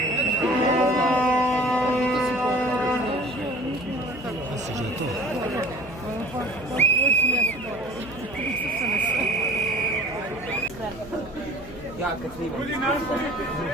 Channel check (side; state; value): left; noise; hum, 16 dB below the sound